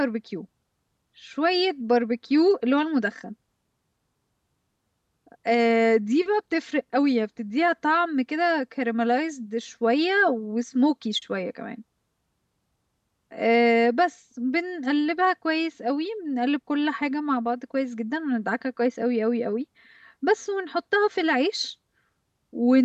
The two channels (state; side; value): identical; both; correlation 1.00